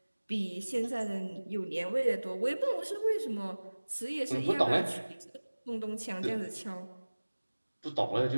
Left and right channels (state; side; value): inverted; both; correlation -1.00